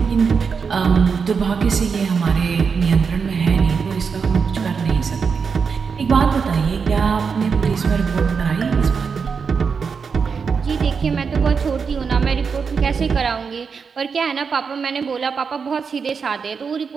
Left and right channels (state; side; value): quieter; left; 5.7 dB